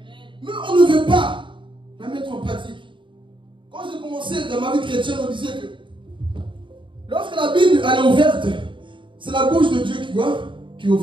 Mais on ne veut pas la mettre en pratique. Quand j'ai commencé dans ma vie chrétienne, on disait que lorsque la Bible elle est ouverte, c'est la bouche de Dieu qui est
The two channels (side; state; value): left; late; 0.24 ms